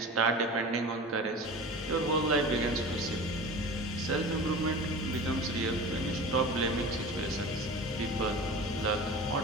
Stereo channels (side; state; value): both; normal; correlation 0.35